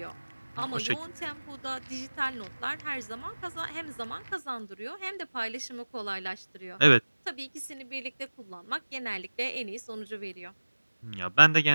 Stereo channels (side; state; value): both; inverted; correlation -1.00